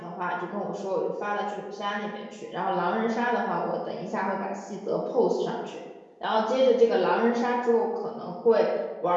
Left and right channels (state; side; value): identical; both; correlation 1.00